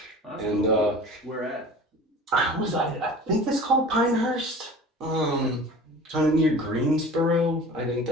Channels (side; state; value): both; normal; correlation 0.40